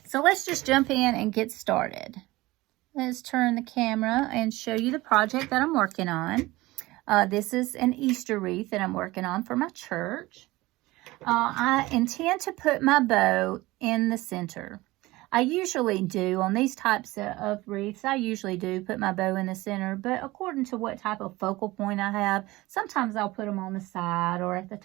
So let's just jump in and get started. Let's turn the camera and show you the project that I'm working on. This is an Easter wreath that I'm working on for my church. I intend to put my bow in the center. I usually do on these types of wreaths. I usually do put my bow in the center, but according to what type of focal point I have, sometimes I'll put them on the side or at the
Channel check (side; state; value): left; quieter; 19.7 dB